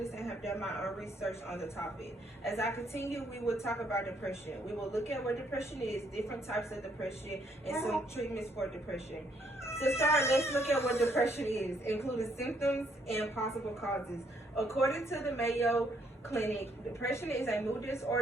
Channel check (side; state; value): both; normal; correlation 0.70